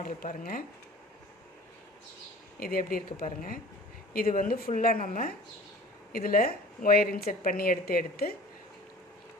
பாருங்கள். இது எப்படி இருக்குது பாருங்கள். இது வந்து ஃபுல்லாக நம்ம இதில் ஒயர் இன்செர்ட் பண்ணி எடுத்து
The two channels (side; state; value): both; normal; correlation 0.44